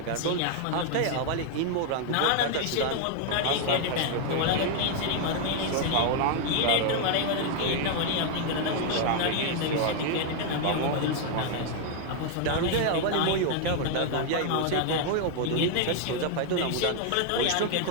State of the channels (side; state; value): both; different; correlation 0.00